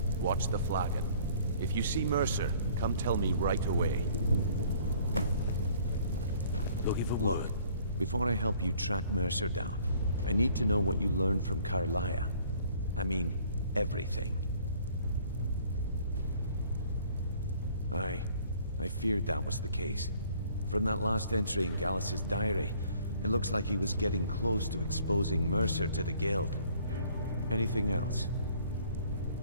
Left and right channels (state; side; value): inverted; both; correlation -0.57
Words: watch the flagon. If you see Mercer, come tell me right away. Looking for Look, work. before I help you track Mercer down, I need to know what you learned from Carlia. I mean, everything. I feared that was the case. From that last entry in Gallus's diary, it looks like he was getting close to exposing Mercer to the Guild. Anything else?